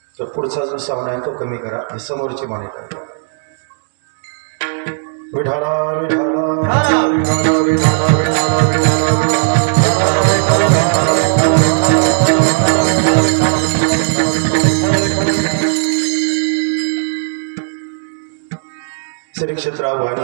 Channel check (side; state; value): left; silent; digital silence